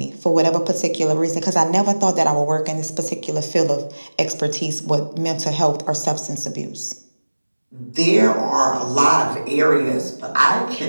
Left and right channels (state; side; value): inverted; both; correlation -1.00